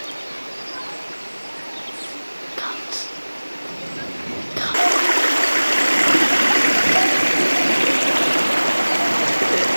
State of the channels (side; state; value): both; inverted; correlation -1.00